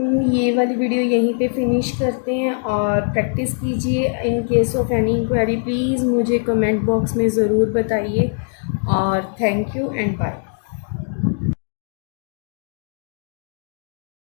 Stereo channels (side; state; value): right; silent; 65 dB below the other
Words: ये वाली वीडियो यहीं पे फिनिश करते हैं और प्रैक्टिस कीजिए। In case of any inquiry please मुझे कमेंट बॉक्स में ज़रूर बताइए और थैंक यू एंड बाय।